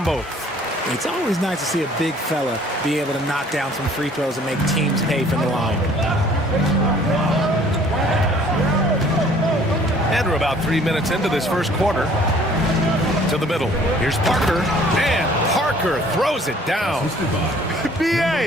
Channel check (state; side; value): normal; both; correlation 0.56